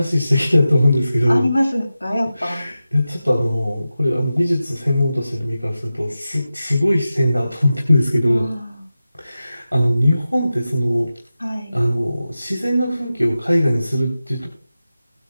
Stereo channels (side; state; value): both; inverted; correlation -0.93